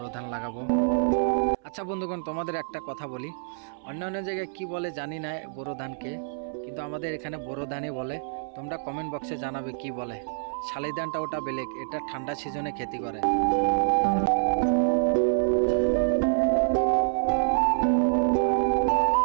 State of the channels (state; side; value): silent; left; 60 dB below the other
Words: ধান লাগাবো। আচ্ছা বন্ধুগণ, তোমাদের একটা কথা বলি, অন্য অন্য জায়গায় কি বলে জানি না বোরো ধানকে, কিন্তু আমাদের এখানে বোরো ধানই বলে। তোমরা কমেন্ট বক্সে জানাবে কি বলে। শালি ধানটা ওটা বেলেগ, এটা ঠান্ডা সিজনে খেতি করে।